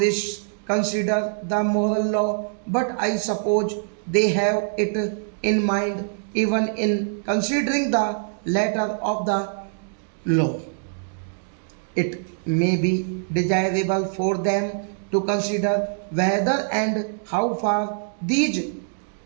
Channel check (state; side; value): silent; left; digital silence